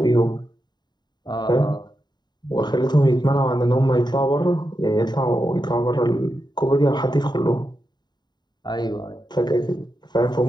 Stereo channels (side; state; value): right; late; 0.21 ms